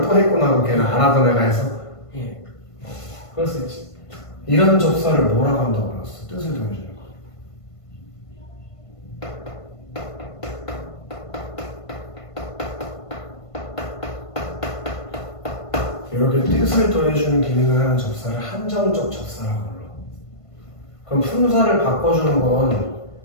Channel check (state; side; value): late; right; 1.5 ms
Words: 또 했구나. 그럼 걔는 안 하던 애가 해서? 예. 그럴 수 있지. 이런 접사를 뭐라고 한다고 그랬어? 뜻을 더해주는 거. 이렇게 뜻을 더해주는 기능을 하는 접사를 한정적 접사라고 불러. 그럼 품사를 바꿔주는 건